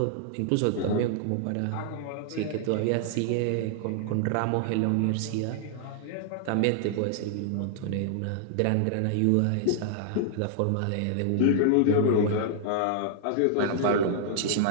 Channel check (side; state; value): both; different; correlation -0.01